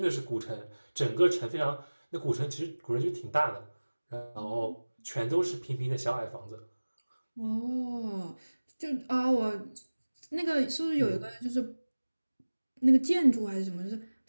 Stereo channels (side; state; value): both; inverted; correlation -1.00